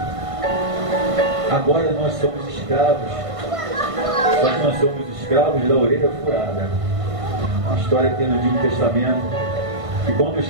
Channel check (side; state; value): left; late; 1.5 ms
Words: agora nós somos escravos, só que nós somos escravos da orelha furada. Uma história que tem no Antigo Testamento, E quando o